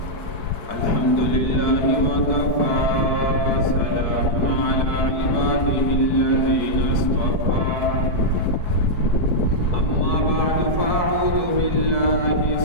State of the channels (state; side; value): late; right; 4.6 ms